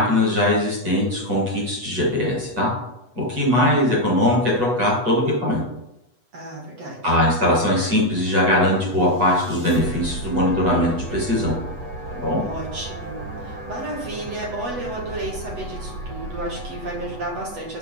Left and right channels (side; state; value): left; late; 8.1 ms